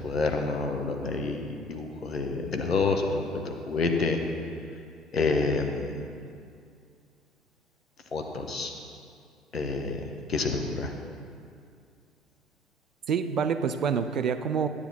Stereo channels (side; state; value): both; normal; correlation 0.52